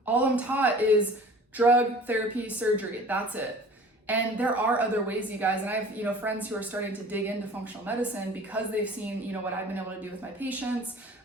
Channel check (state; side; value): normal; both; correlation 0.45